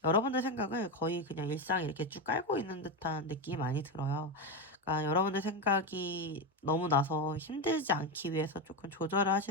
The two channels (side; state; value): both; normal; correlation 0.12